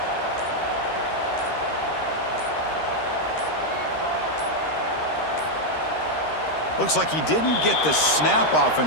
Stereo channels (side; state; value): right; late; 13 ms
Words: Looks like he didn't get the snap off